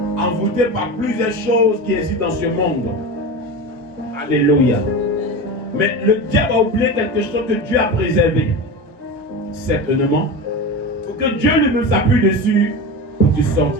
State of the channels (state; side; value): normal; both; correlation 0.26